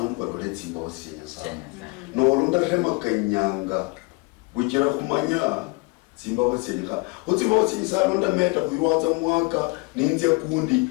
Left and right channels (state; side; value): quieter; right; 27.8 dB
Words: balole tsimba basi Nyasaye no ndahema kanyanga bukira kumanya tsimba basi Nyasaye utsimba basi Nyasaye ndameta kuirwatsa mwaka ninze